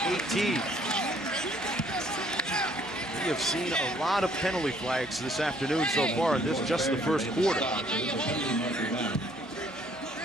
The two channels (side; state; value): both; normal; correlation 0.63